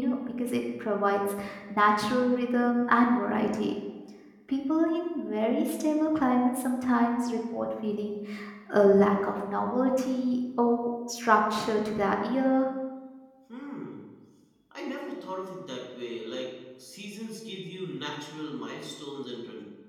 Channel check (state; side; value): identical; both; correlation 1.00